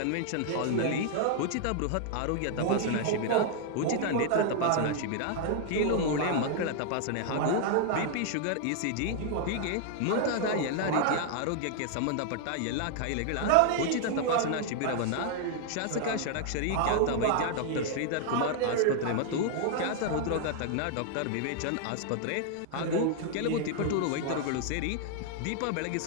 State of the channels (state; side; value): different; both; correlation 0.00